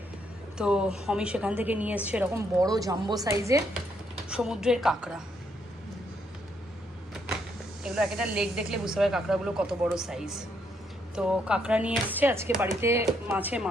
তো অমি সেখান থেকে নিয়ে এসছে এরকম বড় জাম্বো সাইজের সমুদ্রের কাঁকড়া। এগুলো একটা লেগ দেখলে বুঝতে পারে কাঁকড়াগুলো কত বড় সাইজ। তো কাঁকড়া নিয়ে এসছে আজকে বাড়িতে, মাছে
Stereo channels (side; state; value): both; normal; correlation 0.74